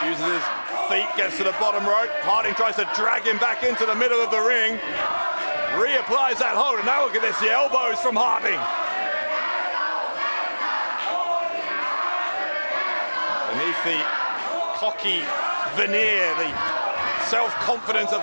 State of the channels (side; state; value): both; inverted; correlation -1.00